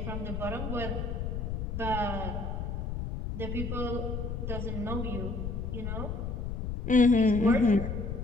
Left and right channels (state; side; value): noise; left; rumble, 3 dB below the sound